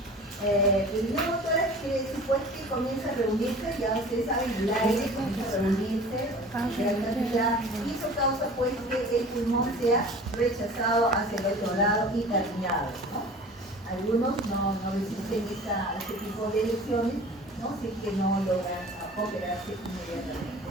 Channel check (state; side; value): normal; both; correlation 0.42